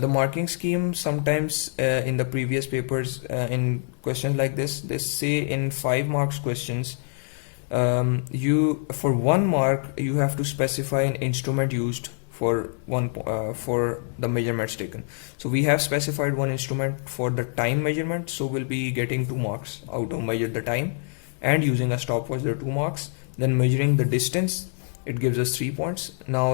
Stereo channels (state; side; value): silent; right; 61 dB below the other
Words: marking scheme sometimes in the previous papers in questions like this, they say in 5 marks questions, you for 1 mark you have to specify an instrument used for for the measurements taken. So we have specified one instrument for the time measurement, so we'll be getting 2 marks out of measure the time, and using a stopwatch there are 2 marks. Then measuring the distance, it gives us 3 points.